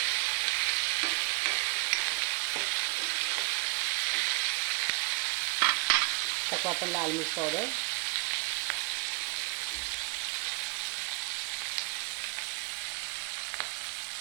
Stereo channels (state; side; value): quieter; left; 30.3 dB